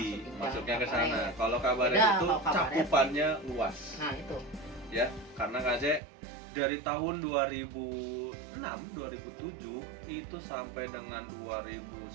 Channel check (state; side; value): drops out; left; at 6.0 s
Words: masuknya ke sana. Kalau kabaret itu cakupannya luas. Nah itu. Ya, karena KJ dari tahun 2006, 2007 itu sampai dengan